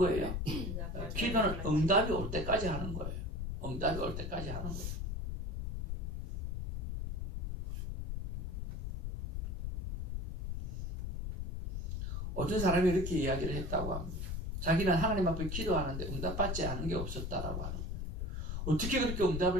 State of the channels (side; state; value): left; noise; rumble, 3 dB below the sound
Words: 기도는 응답이 올 때까지 하는 거예요. 응답이 올 때까지 하는 거예요. 어떤 사람이 이렇게 이야기를 했다고 합니다. 자기는 하나님 앞에 기도하는데 응답받지 않은 게 없었다라고 하는 거예요. 어떻게 그렇게